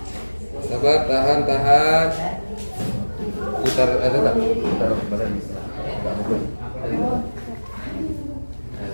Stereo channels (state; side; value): inverted; both; correlation -1.00